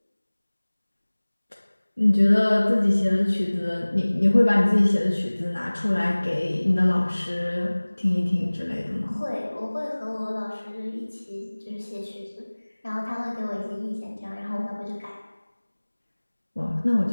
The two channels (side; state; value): both; inverted; correlation -1.00